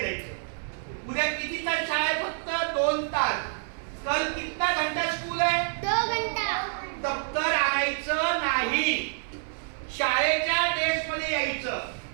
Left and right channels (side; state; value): left; silent; 56 dB below the other